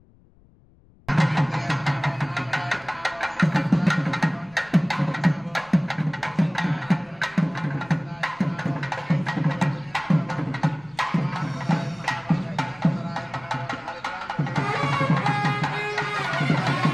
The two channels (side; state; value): left; noise; rumble, 29 dB below the sound